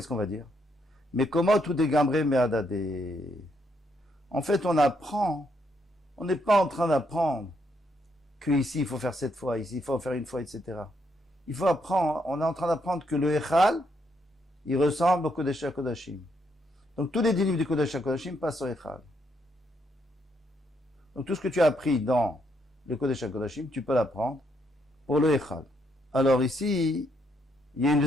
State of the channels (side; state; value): both; normal; correlation 0.75